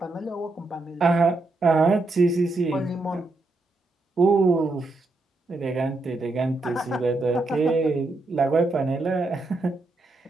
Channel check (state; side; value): quieter; left; 3.1 dB